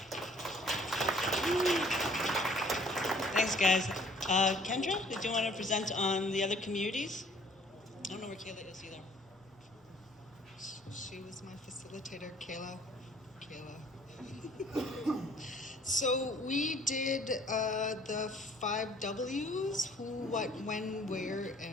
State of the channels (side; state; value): both; normal; correlation 0.57